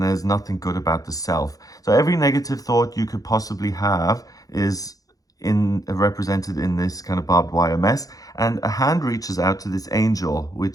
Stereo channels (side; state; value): right; late; 0.17 ms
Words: there's nothing good about the self. So every negative thought you could possibly have is represented in this kind of barbed wire mess. And a hand reaches out to this angel,